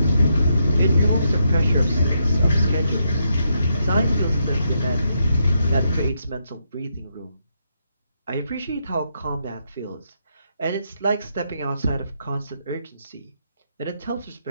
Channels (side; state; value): both; inverted; correlation -0.79